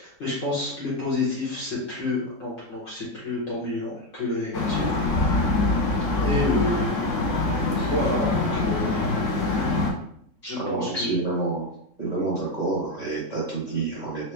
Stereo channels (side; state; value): right; late; 3.6 ms